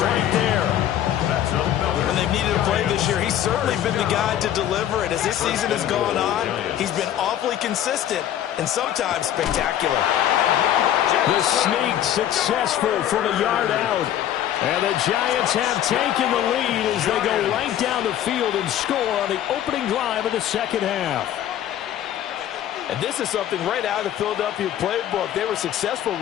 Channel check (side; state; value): right; quieter; 11.3 dB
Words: right there. When they've needed a play this year, he's certainly been the guy to deliver it. As this season has gone on, he's been awfully consistent and sometimes spectacular. The sneak successful from a yard out. And the Giants have taken the lead as they go right down the field and score on the opening drive of the second half. And this is something right out of the Philadelphia playbook. They were successful